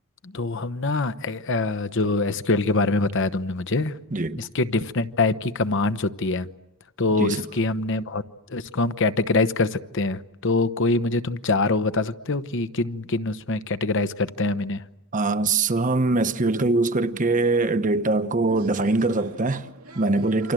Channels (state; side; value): normal; both; correlation 0.28